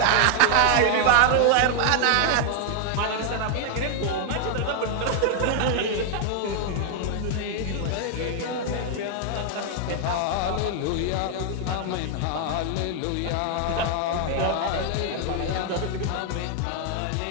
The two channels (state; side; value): different; both; correlation 0.00